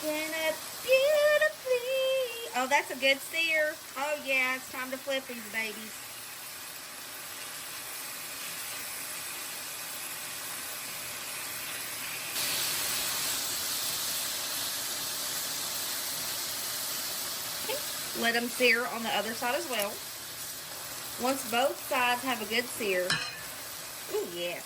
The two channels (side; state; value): both; identical; correlation 1.00